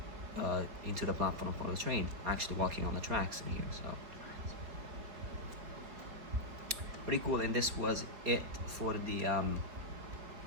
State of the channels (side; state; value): left; late; 4.0 ms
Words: into the platform for the train, actually walking on the tracks in here. So pretty cool. And this was it for the